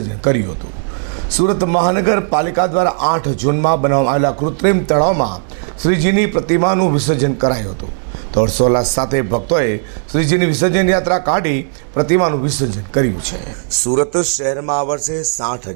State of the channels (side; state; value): left; silent; digital silence